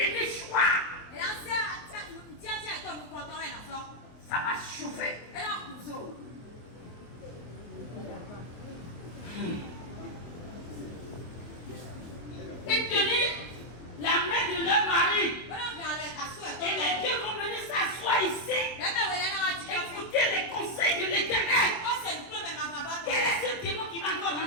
choix. Ça va chauffer. Ils tenir la main de leur mari. Et les deux vont venir s'asseoir ici. Écouter les conseils de l'Éternel. Quel est ce démon qui va encore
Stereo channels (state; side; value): late; right; 24 ms